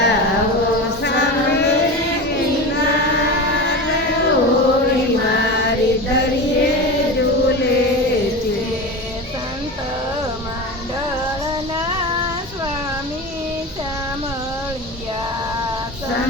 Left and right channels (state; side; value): normal; both; correlation 0.27